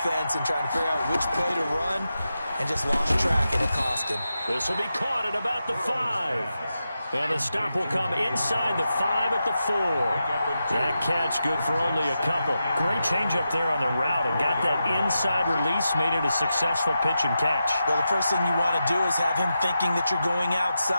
and trying to figure out which play to run and just lost track, and it cost him. This will be caught at about the 5. And the stop will come inside the 5 at the 4. That catch good for only a couple. Great change up there on the route and got that inside release, made it a successful pitch and catch. Well, the first thing you want to do is have him thinking that you're going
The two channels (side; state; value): both; inverted; correlation -0.89